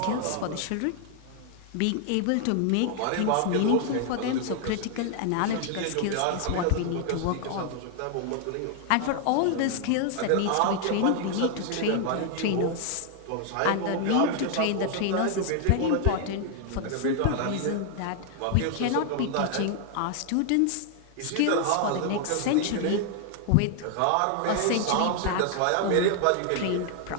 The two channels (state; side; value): different; both; correlation 0.00